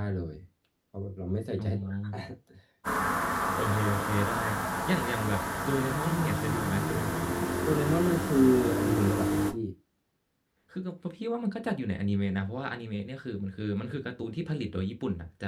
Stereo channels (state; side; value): identical; both; correlation 1.00